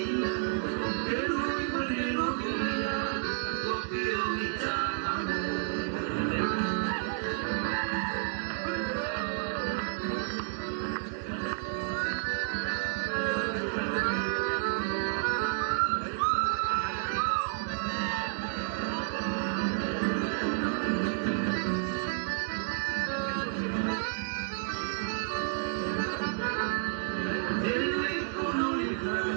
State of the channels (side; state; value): left; silent; 57 dB below the other